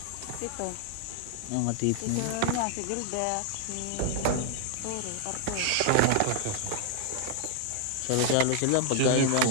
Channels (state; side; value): different; both; correlation 0.00